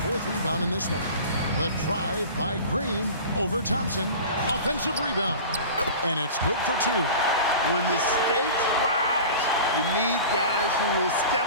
rebound in this one. The drive by Green over Thompson. Offensive rebound. And it's good for 2. When the stakes rise, you need guys who will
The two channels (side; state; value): both; inverted; correlation -0.37